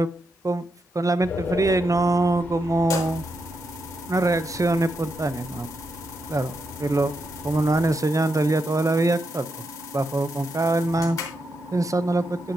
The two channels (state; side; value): normal; both; correlation 0.84